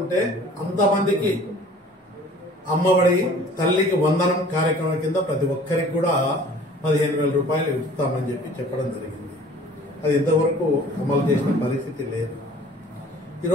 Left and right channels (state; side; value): normal; both; correlation 0.49